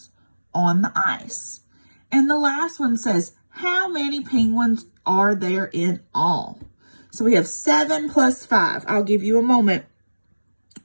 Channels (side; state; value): both; inverted; correlation -1.00